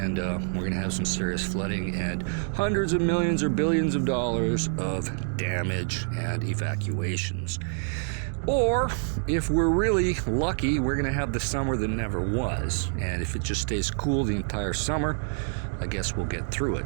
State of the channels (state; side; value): silent; left; 60 dB below the other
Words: we're going to have some serious flooding and hundreds of millions or billions of dollars of damage and evacuations. Or, if we're really lucky, we're going to have the summer that never was. And if it just stays cool the entire summer, I guess we'll get through